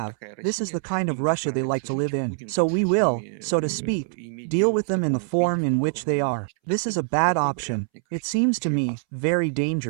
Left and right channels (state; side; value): silent; left; 62 dB below the other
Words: this is the kind of Russia they like to live in. So we will, so to speak, deal with them in the form in which they are. This is a bad option. It seems to me very